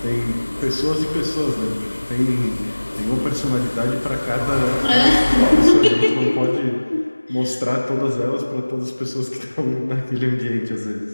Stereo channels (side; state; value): both; inverted; correlation -1.00